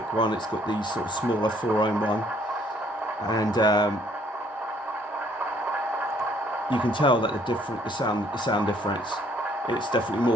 one, it's got the sort of smaller 4-ohm one. and you can tell that the sound difference. It's definitely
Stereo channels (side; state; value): both; normal; correlation 0.63